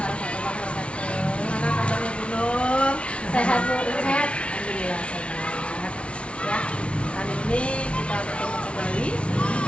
wabarakatuh. Gimana kabarnya Bu Nur? Sehat Bu, sehat. Alhamdulillah sehat. Ya, kali ini kita bertemu kembali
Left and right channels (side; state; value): right; late; 0.060 ms